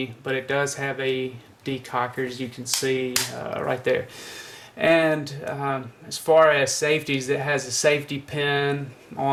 but it does have a decocker, as you can see right there. And as far as safeties, it has a safety pin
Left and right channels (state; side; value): identical; both; correlation 1.00